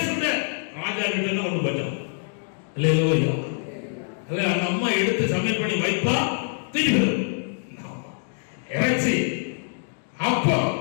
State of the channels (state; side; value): silent; right; 62 dB below the other